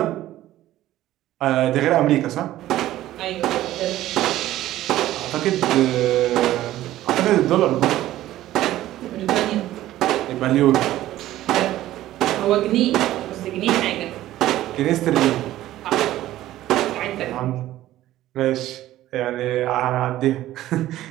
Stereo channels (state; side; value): quieter; left; 14.4 dB